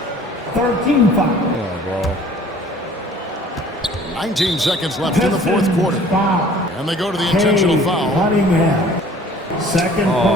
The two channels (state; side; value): normal; both; correlation 0.51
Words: 13 foul. Yeah, bro. 19 seconds left in the fourth quarter. And they go to the intentional foul. Cunningham. Second Oh,